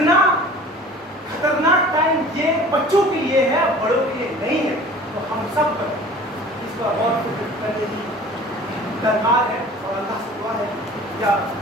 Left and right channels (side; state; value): both; normal; correlation 0.44